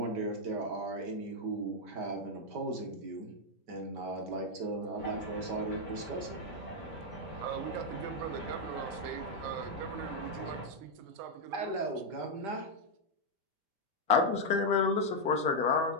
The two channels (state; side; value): late; left; 5.1 ms